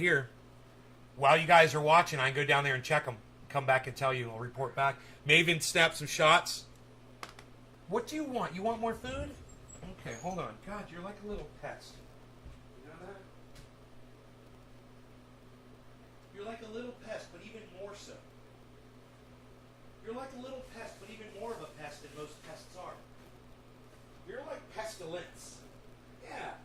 While you guys are watching, I can go down there and check them. Come back and tell you. I'll report back. May even snap some shots. What do you want? You want more food? Okay, hold on. God, you're like a little pest. You know that? You're like a little pest, but even more so. You're like a little pest, but even more of a pest than most pests are. You're like pestilence. Yeah,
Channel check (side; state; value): both; identical; correlation 1.00